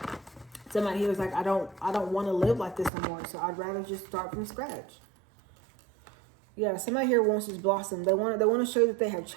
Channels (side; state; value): left; drops out; at 2.9 s